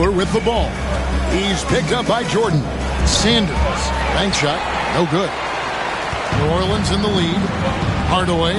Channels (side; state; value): both; identical; correlation 1.00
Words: with the ball. He's picked up by Jordan. Sanders. Bank shot. No good. New Orleans in the lead. Hardaway